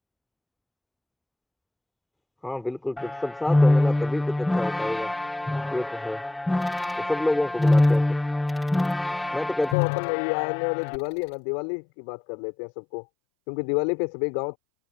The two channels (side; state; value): right; drops out; at 9.8 s